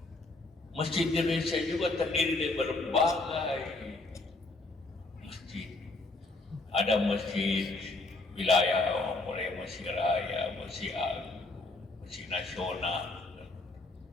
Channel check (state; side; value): quieter; right; 3.1 dB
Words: Masjid Indonesia juga terdiri dari berbagai masjid. Ada masjid wilayah, mulai masjid raya, masjid agung, masjid nasional,